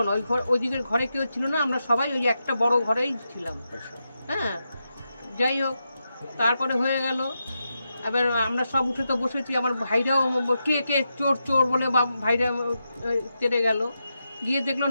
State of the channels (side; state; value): both; inverted; correlation -0.87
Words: না, ওইদিকের ঘরে কেউ ছিল না, আমরা সবাই ওই একটা বড় ঘরেই ছিলাম। হ্যাঁ, যাই হোক, তারপরে হয়ে গেল। এবার আমরা সব উঠে তো বসেছি, আমার ভাইরাও কে চোর চোর বলে ভাইরা তেড়ে গেল। গিয়ে দেখলো